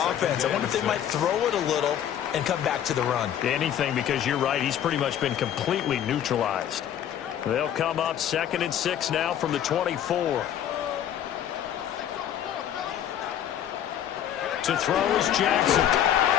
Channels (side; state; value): right; quieter; 10.3 dB